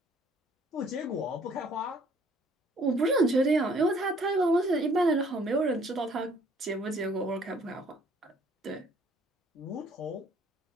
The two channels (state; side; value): normal; both; correlation 0.60